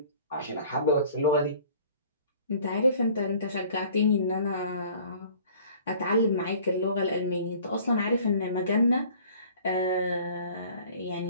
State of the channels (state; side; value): inverted; both; correlation -0.51